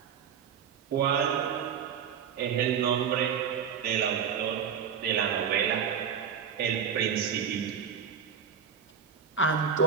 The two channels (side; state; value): left; quieter; 7.5 dB